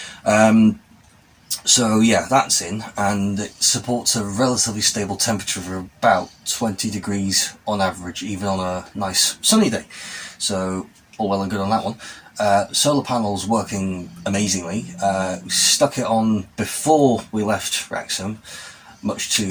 So yeah, that's in, and it supports a relatively stable temperature of about 20 degrees on average, even on a nice sunny day. So all well and good on that one. Solar panels working amazingly. We stuck it on before we left Wrexham, much to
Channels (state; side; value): identical; both; correlation 1.00